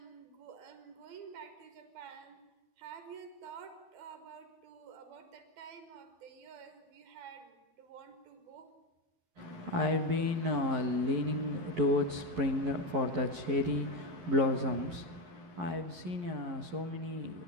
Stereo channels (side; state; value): left; late; 11 ms